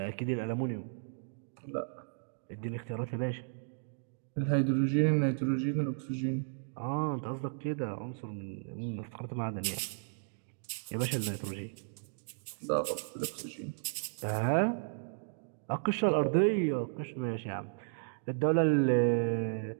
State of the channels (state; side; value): silent; left; digital silence